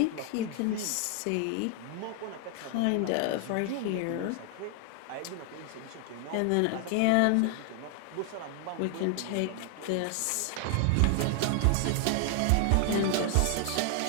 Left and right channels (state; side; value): different; both; correlation 0.00